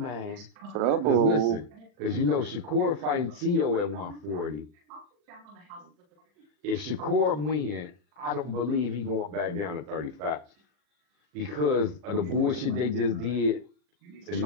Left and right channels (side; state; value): left; late; 40 ms